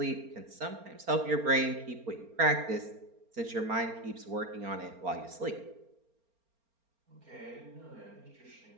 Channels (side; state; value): left; late; 4.4 ms